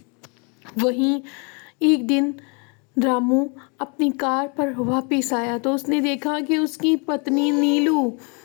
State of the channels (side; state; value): right; quieter; 34.2 dB